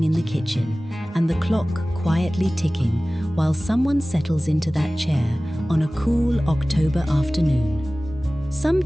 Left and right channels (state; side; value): normal; both; correlation 0.98